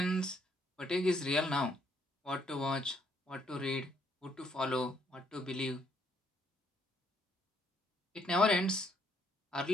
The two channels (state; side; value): normal; both; correlation 0.70